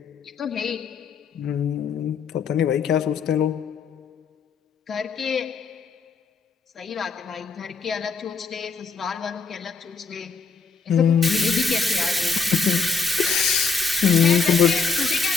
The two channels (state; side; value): quieter; right; 5.0 dB